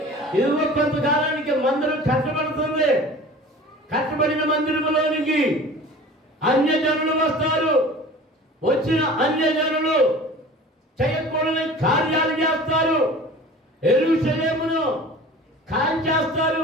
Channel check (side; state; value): both; normal; correlation 0.41